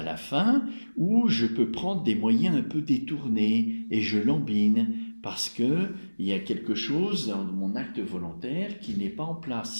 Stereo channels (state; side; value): inverted; both; correlation -1.00